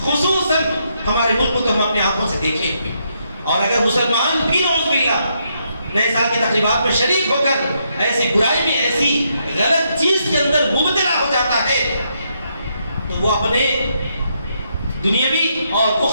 خصوصاً ہمارے ملک کو تو ہم اپنے آنکھوں سے دیکھیں گے، اور اگر مسلمان بھی نعوذ باللہ نئے سال کی تقریبات میں شریک ہو کر ایسی برائی میں، ایسی غلط چیز کے اندر مبتلا ہو جاتا ہے، تو وہ اپنے دنیاوی اور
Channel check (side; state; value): both; inverted; correlation -0.77